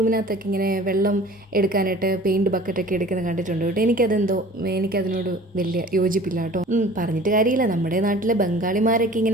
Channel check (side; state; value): both; normal; correlation 0.46